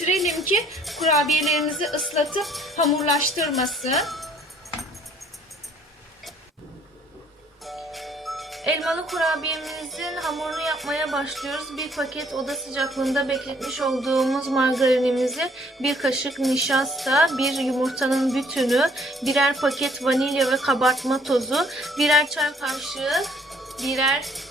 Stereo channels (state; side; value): normal; both; correlation 0.61